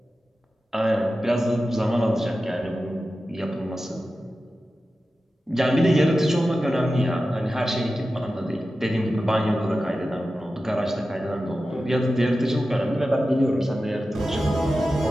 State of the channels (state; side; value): normal; both; correlation 0.93